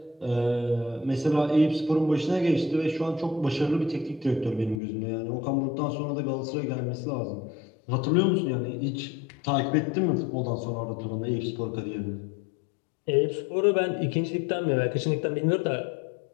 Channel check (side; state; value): right; drops out; at 4.8 s